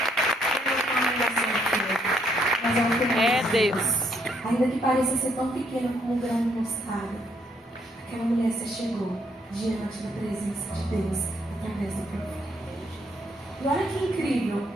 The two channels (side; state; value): both; normal; correlation 0.71